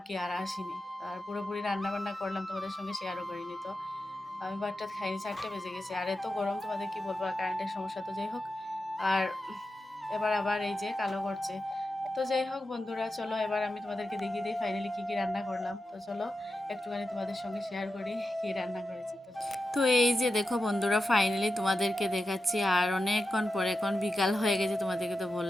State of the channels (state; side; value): normal; both; correlation 0.91